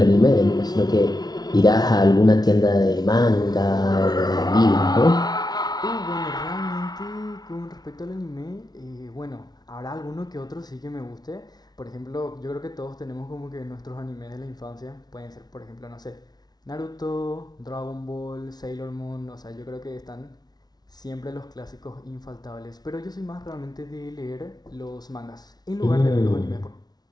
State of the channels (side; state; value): right; late; 0.19 ms